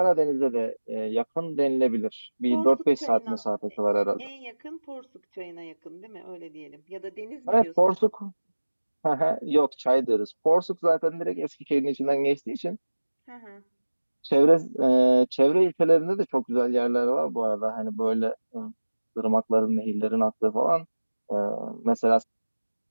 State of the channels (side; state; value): both; inverted; correlation -1.00